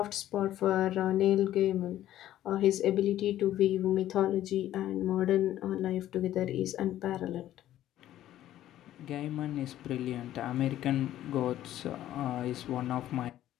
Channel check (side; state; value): right; quieter; 12.9 dB